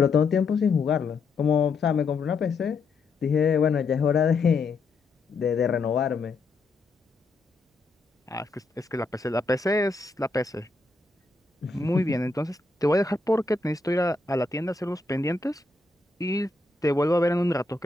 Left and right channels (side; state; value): right; quieter; 3.7 dB